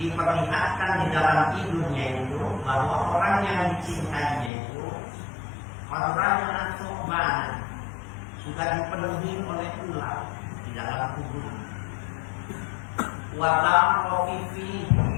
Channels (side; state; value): right; drops out; at 4.5 s